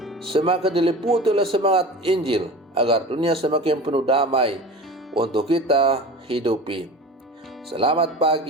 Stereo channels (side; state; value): both; normal; correlation 0.34